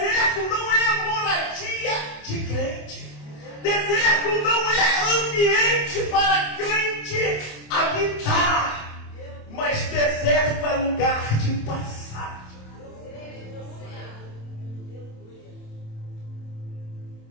não é moradia de crente. Deserto não é ambiente para crente habitar. Mas deserto é lugar de passagem.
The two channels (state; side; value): late; right; 27 ms